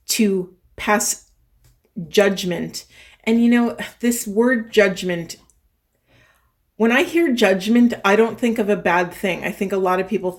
to pass judgment. And you know, this word judgment, when I hear judgment, I don't think of a bad thing. I think a lot of people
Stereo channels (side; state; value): both; identical; correlation 1.00